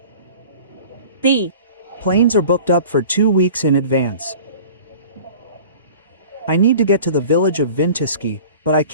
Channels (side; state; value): both; inverted; correlation -0.43